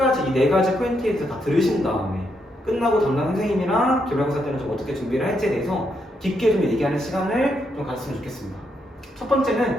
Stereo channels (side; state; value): both; normal; correlation 0.79